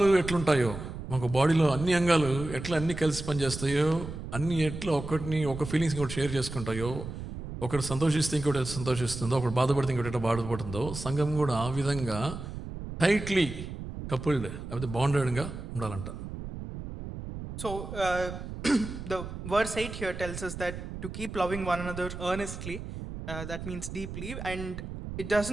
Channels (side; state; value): right; noise; rumble, 9 dB below the sound